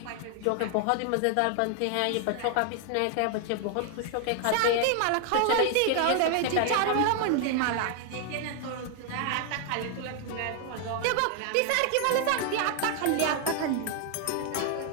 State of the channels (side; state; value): both; different; correlation 0.00